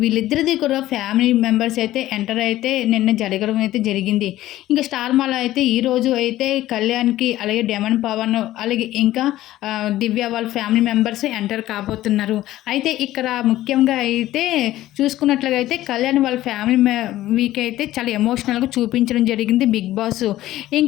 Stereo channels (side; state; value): right; quieter; 14.9 dB